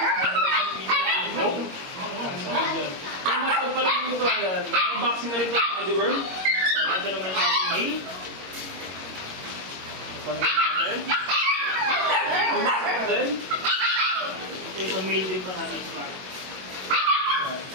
Big bone. Kung matag pa lang dito, ayan, may unboxing na rin ito sa deworm. Ito naman yung ating male. Pangin natin. Unboxing natin. Ito yung male din pa natin.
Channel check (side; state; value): left; late; 21 ms